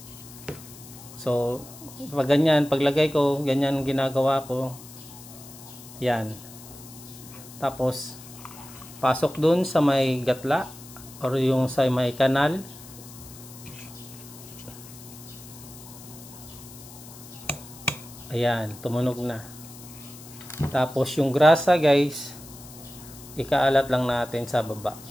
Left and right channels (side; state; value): left; noise; hiss, 17 dB below the sound